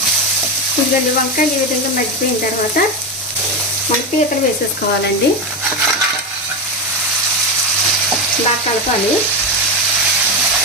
ఇదిగోండి, వంకాయలు ఈ విధంగా మగ్గిపోయిన తర్వాత మన పీతలు వేసేసుకోవాలండి. బాగా కలపాలి.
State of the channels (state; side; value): normal; both; correlation 0.14